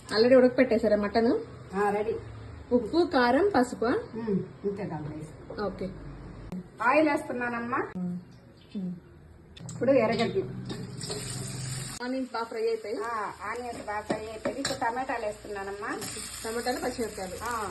ఆల్రెడీ ఉడకపెట్టేశారా మటన్? రెడీ. ఉప్పు, కారం, పసుపు. ఇంతే దాంట్లో వేసి ఓకే. ఆయిల్ వేస్తున్నానమ్మా. ఇప్పుడు ఎర్రగడ్డలు, ఆనియన్స్ బాగా ఫ్రై అయిపోయి. ఆనియన్స్ బాగా ఫ్రై అయిపోయి ఇప్పుడు టమాటాలు వేస్తున్నానమ్మా. టమాటాలు, పచ్చిమిరపకాయలు,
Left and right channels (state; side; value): identical; both; correlation 1.00